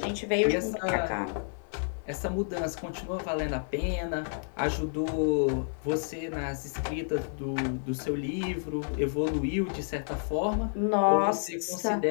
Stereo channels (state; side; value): silent; right; 58 dB below the other